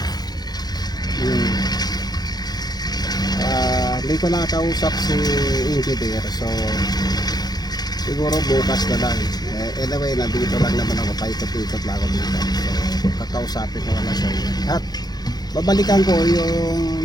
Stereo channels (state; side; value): late; right; 0.19 ms